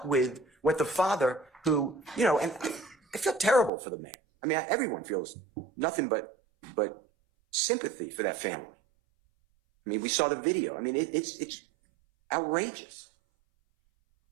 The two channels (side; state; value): left; drops out; at 3.7 s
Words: with what the father who, you know, and I feel terrible for the man. I mean, everyone feels nothing but sympathy for that family. I mean, we saw the video. I mean, it's outrageous.